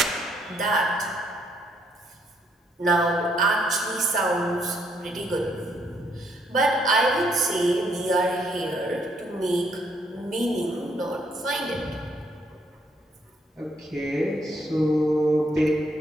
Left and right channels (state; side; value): normal; both; correlation 0.71